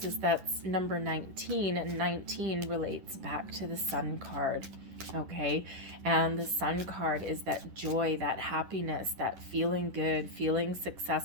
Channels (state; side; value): late; left; 11 ms